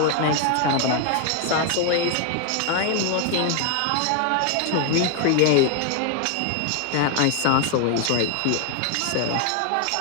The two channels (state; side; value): different; both; correlation 0.00